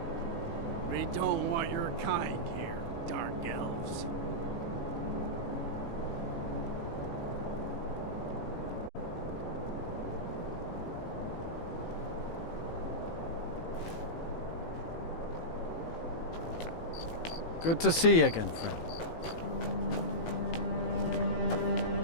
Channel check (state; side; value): late; right; 18 ms